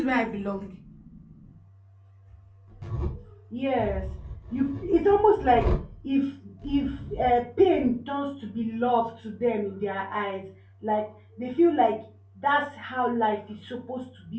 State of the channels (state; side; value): identical; both; correlation 1.00